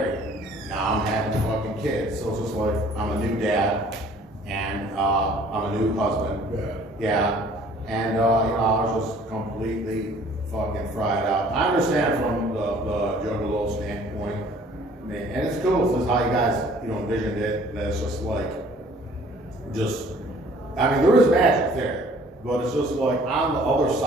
Now I'm having fucking kids. So it's just like, I'm a new dad. And I'm a new husband. Yeah. And, you know, I was just completely fucking fried out. I understand from the Juggalo standpoint. And it's cool. This is how you guys, you know, envisioned it. That it's just like, I mean, there is magic there, but it's just like on the other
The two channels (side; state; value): both; normal; correlation 0.54